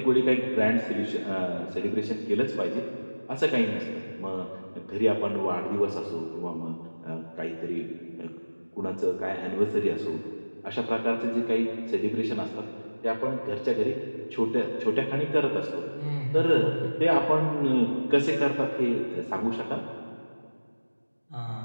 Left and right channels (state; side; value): inverted; both; correlation -1.00